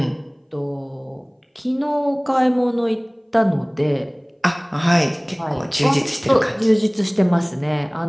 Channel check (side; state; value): both; identical; correlation 1.00